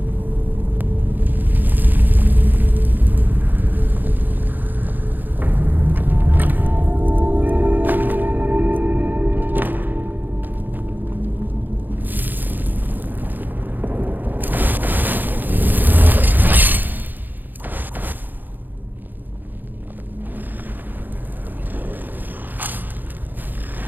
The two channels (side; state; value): left; late; 0.088 ms